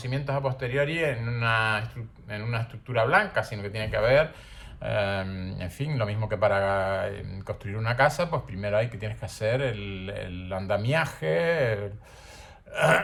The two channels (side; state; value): both; identical; correlation 1.00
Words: a posteriori en una estructura blanca, sino que tiene que haber, en fin, lo mismo que para construir una casa, pues primero tienes que hacer el andamiaje,